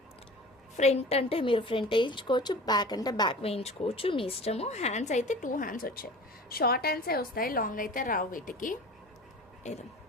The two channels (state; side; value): normal; both; correlation 0.39